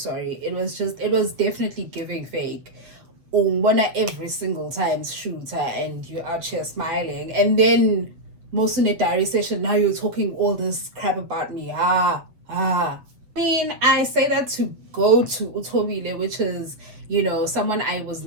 It was definitely giving fake. Every single time shooter, and you're out here smiling, and then most in a diary session, now you're talking all this crap about me. I mean, I say that to go to Utobile, which is someone I was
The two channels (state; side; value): late; left; 8.0 ms